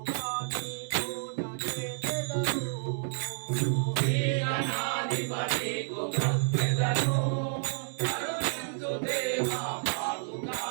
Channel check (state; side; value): silent; left; digital silence